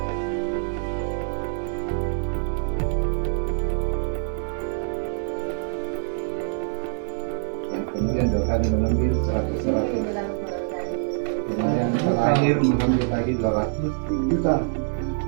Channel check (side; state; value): left; silent; 62 dB below the other